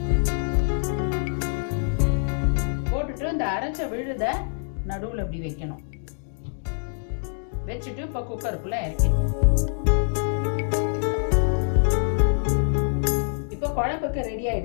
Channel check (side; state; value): right; silent; digital silence